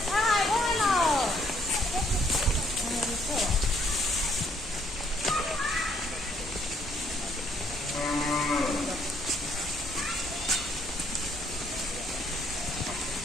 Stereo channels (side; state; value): both; normal; correlation 0.69